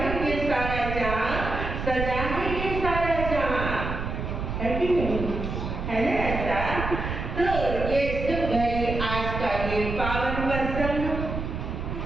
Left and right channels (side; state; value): right; noise; rumble, 4 dB below the sound